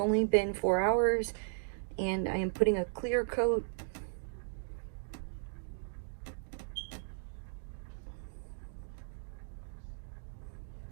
been 4 hours, and I am putting a clear coat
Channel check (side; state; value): left; silent; digital silence